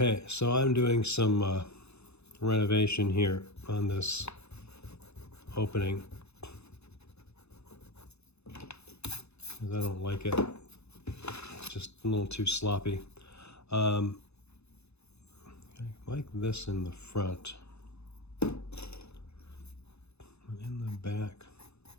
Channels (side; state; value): right; late; 0.80 ms